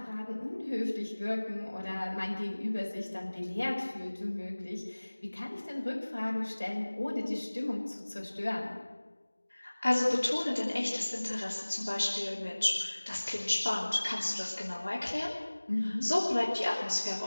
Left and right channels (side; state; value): both; inverted; correlation -1.00